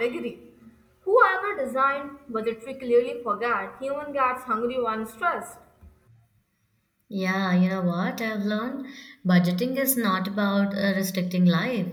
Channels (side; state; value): both; identical; correlation 1.00